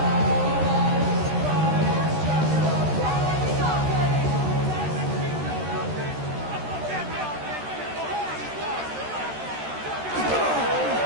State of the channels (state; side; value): late; left; 13 ms